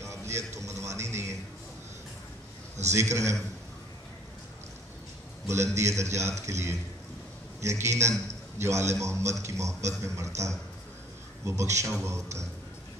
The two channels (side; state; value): both; normal; correlation 0.57